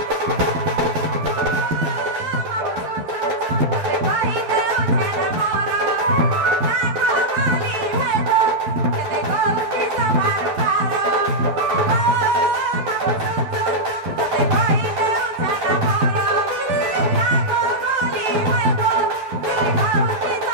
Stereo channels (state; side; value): late; left; 11 ms